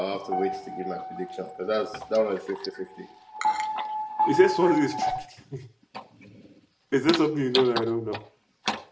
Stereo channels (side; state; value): both; identical; correlation 1.00